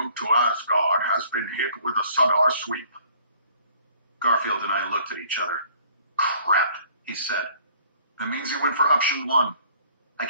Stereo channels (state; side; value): inverted; both; correlation -0.57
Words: to Asgard has been hit with a SUDAR sweep. Garfield and I looked at each other. Crap, he said. That means he went for option 1. I